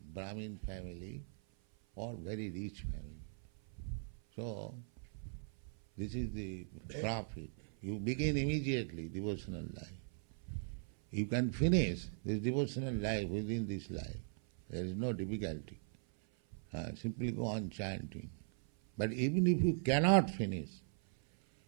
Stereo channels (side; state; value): left; silent; 52 dB below the other